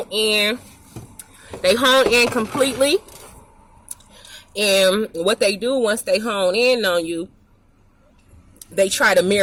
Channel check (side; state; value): both; identical; correlation 1.00